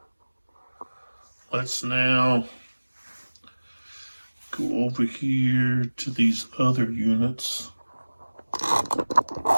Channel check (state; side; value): inverted; both; correlation -1.00